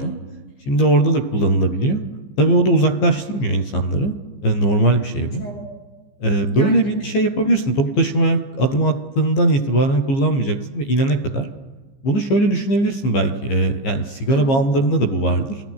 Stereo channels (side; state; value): right; late; 15 ms